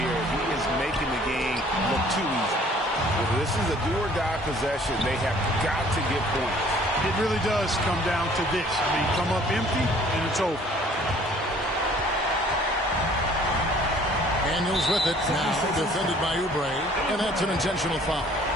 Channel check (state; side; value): normal; both; correlation 0.55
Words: He is making the game look too easy. If this is a do-or-die possession, they have got to get points. It really does come down to this. I mean, come up empty, and it's over. Daniels with it now, defended by Oubre, and that's an intentional foul.